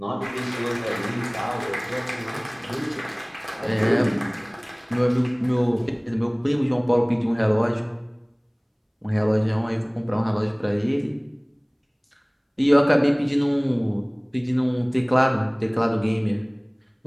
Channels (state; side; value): identical; both; correlation 1.00